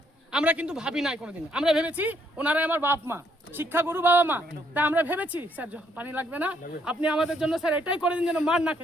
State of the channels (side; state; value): both; normal; correlation 0.71